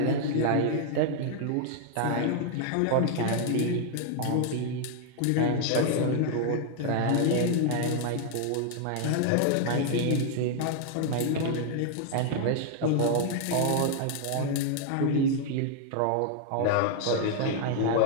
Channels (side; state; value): both; different; correlation 0.00